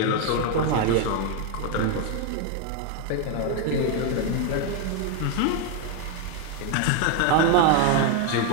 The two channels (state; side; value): different; both; correlation 0.01